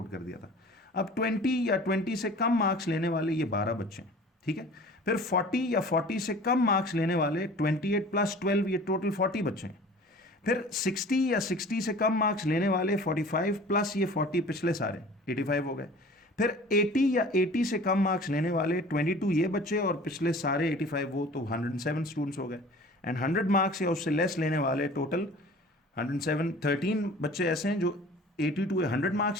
कर दिया था। अब 20 या 20 से कम मार्क्स लेने वाले ये 12 बच्चे हैं, ठीक है। फिर 40 या 40 से कम मार्क्स लेने वाले 28 + 12 ये टोटल 40 बच्चे हैं। फिर 60 या 60 से कम मार्क्स लेने वाले 45 प्लस ये 40 पिछले सारे 85 हो गए। फिर 80 या 80 से कम मार्क्स लेने वाले 22 ये बच्चे और पिछले सारे 85 वो, तो 107 स्टूडेंट्स हो गए। एंड 100 मार्क्स या उससे लेस लेने वाले टोटल 107 13 बच्चे ऐसे हैं जो 82 या 100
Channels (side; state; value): both; normal; correlation 0.44